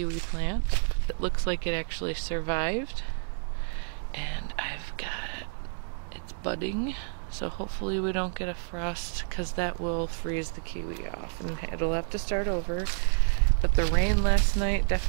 plant. It looks like it actually survived. And I've got, it's budding. So hopefully we don't get a frost because that will freeze the kiwi off and it'll have to start over. But the rain last night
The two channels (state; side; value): silent; left; digital silence